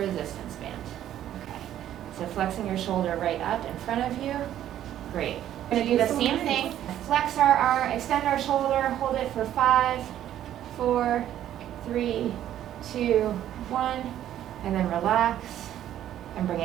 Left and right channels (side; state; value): left; quieter; 11.6 dB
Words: band. Okay. So flexing your shoulder right up in front of you. Great. We're going to do the same thing. Flex our arm, extend our shoulder, hold it for 5, 4, 3, 2, 1, and then relax and bring